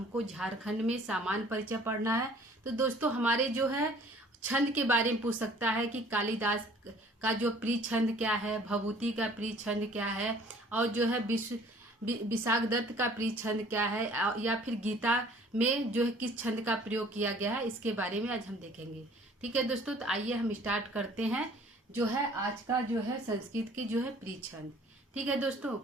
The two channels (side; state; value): both; normal; correlation 0.53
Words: झारखंड में सामान्य परिचय पढ़ना है। तो दोस्तों, हमारे जो है छंद के बारे में पूछ सकता है कि कालिदास का जो प्रिय छंद क्या है, भभूति का प्रिय छंद क्या है, और जो है विशाख दत्त का प्रिय छंद क्या है, या फिर गीता में जो है किस छंद का प्रयोग किया गया है, इसके बारे में आज हम देखेंगे। ठीक है दोस्तों, तो आइए हम स्टार्ट करते हैं जो है आज का जो है संस्कृत के जो है प्रिय छंद। ठीक है दोस्तों,